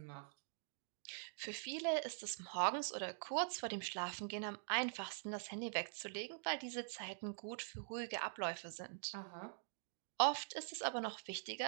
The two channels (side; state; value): left; silent; digital silence